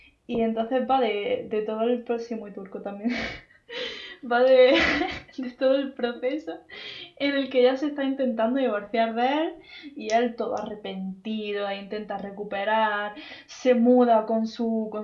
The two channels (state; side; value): identical; both; correlation 1.00